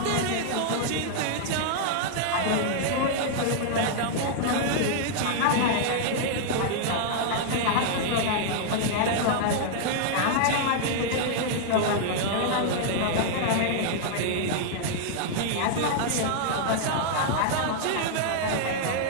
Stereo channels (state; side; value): different; both; correlation -0.01